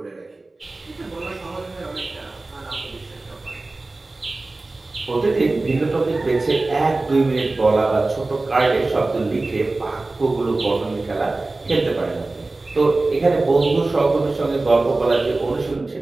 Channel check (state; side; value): quieter; left; 3.2 dB